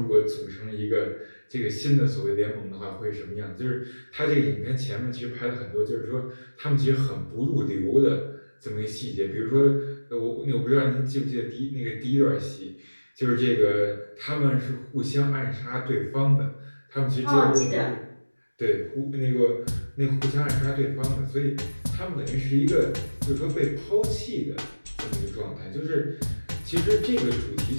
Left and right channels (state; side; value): inverted; both; correlation -1.00